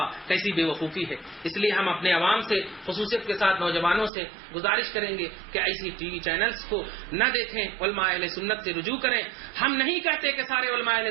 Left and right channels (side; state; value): left; drops out; at 4.1 s